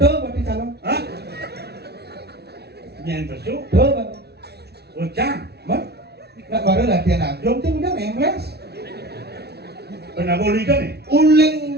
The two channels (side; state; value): left; late; 0.48 ms